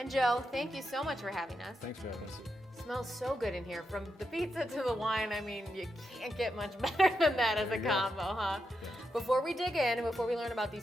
Joe. Thank you so much for having us. Thanks for having us. Smells so good in here. From the pizza to the wine, I mean, you can't get much better than that as a combo, huh? Yeah. Before we dig in, before we learn about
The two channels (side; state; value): both; normal; correlation 0.85